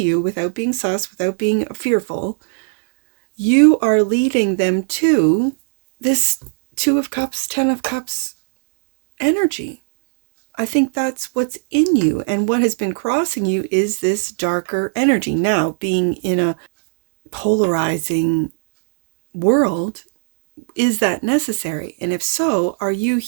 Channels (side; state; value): left; silent; 67 dB below the other